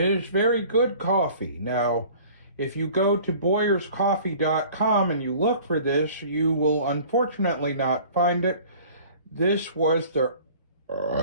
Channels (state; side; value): inverted; both; correlation -0.48